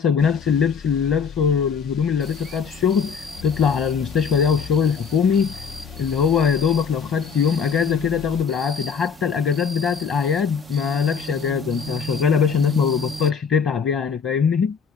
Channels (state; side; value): quieter; right; 6.3 dB